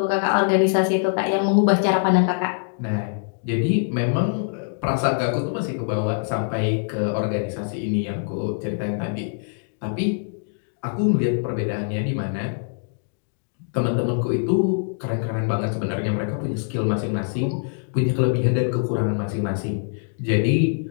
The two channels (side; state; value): right; silent; digital silence